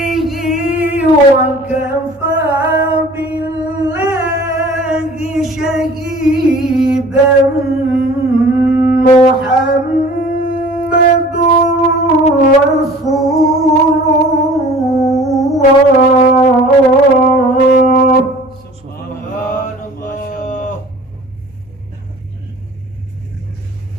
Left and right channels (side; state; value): left; noise; hum, 30 dB below the sound